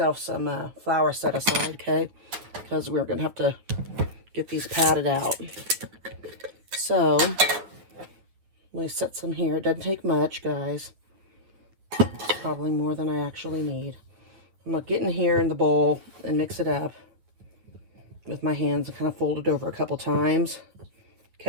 some flour set aside, okay? Because we're going to have to get these patted out. So, let me set some here. It doesn't take much, guys. It's probably more than I actually need. I'm going to get in here in the bowl and mix it up with my hands and kind of fold it over a couple times.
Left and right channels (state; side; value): late; left; 9.6 ms